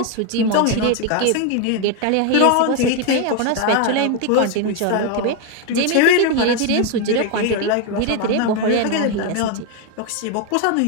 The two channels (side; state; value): both; different; correlation 0.01